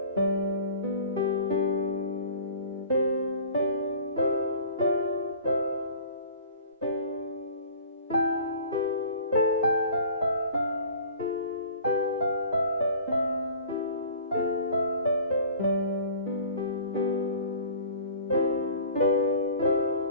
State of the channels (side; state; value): both; inverted; correlation -0.45